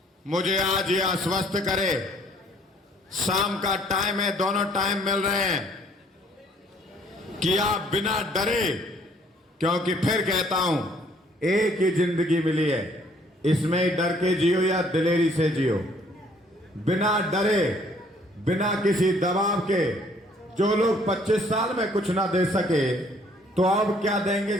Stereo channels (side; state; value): both; normal; correlation 0.61